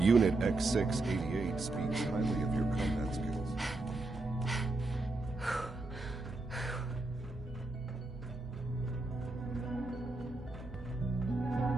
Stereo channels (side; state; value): left; quieter; 3.0 dB